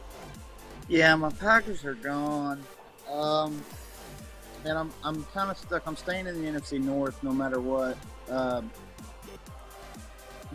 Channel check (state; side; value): identical; both; correlation 1.00